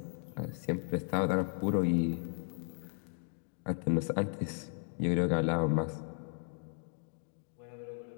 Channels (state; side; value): silent; right; 54 dB below the other